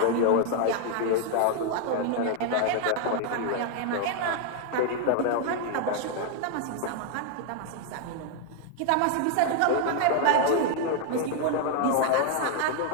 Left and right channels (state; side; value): different; both; correlation 0.00